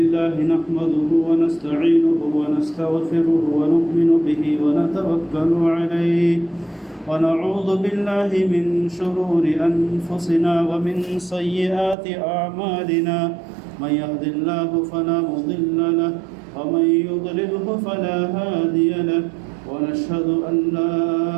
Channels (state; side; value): drops out; left; at 12.0 s